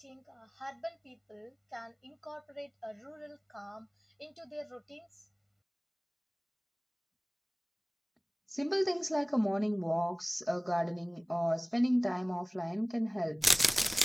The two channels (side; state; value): both; identical; correlation 1.00